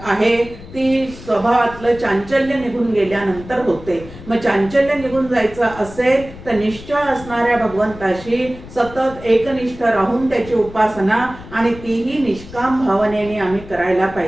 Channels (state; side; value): noise; left; rumble, 16 dB below the sound